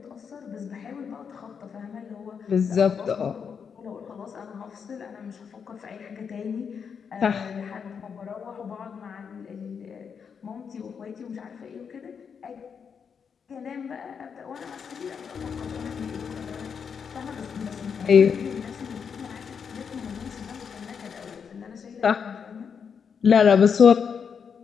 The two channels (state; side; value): quieter; right; 6.6 dB